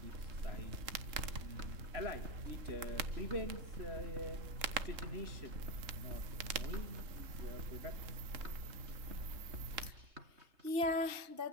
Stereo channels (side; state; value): left; late; 3.6 ms